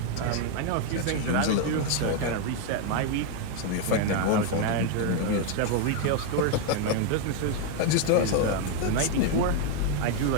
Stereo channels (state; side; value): different; both; correlation 0.01